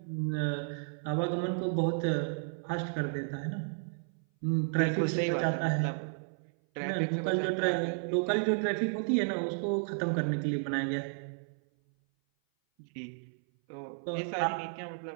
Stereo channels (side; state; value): left; silent; 56 dB below the other